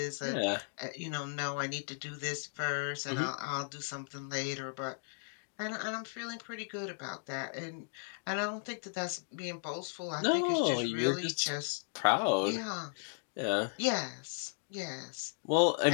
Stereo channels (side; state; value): right; silent; digital silence